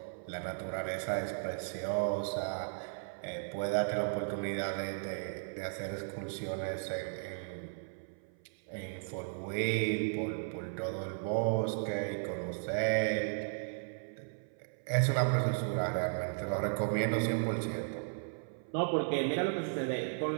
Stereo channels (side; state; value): left; silent; 54 dB below the other